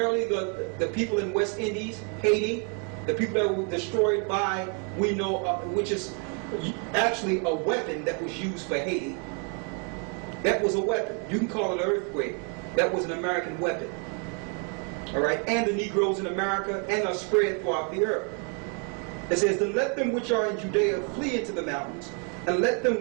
the people in West Indies, Haiti, the people that were destroyed by, we know, which is actually a weapon that was used for Haiti. That was a weapon. You can call it an earthquake. That was an American weapon. All right, and the Negroes in America, and are spread throughout the earth. It says, then let them which are in Judea flee into the mountains, and let them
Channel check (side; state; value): left; quieter; 36.7 dB